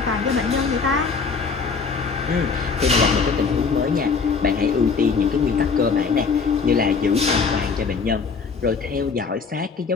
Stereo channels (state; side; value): quieter; right; 5.1 dB